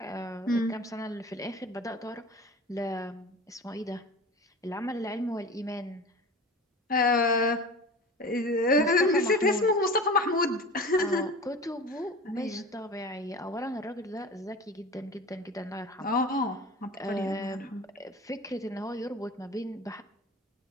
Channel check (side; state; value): both; normal; correlation 0.35